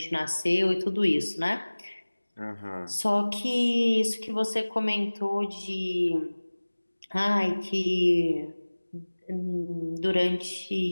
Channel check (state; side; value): inverted; both; correlation -1.00